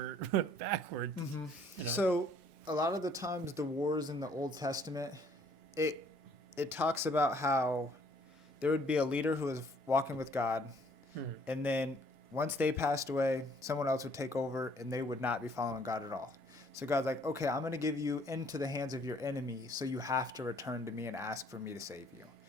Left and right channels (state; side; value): normal; both; correlation 0.61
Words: backward. Mm-hmm. You know? So a lot of the times the wars in the Old Testament, it talks about how there would be a leader who was walking with God, and then once they passed away, someone else would take over, and they would not be following God at all. So God's like, okay, I'm going to give you into the hands of your enemy, so you have to return to me and ask for me to save you.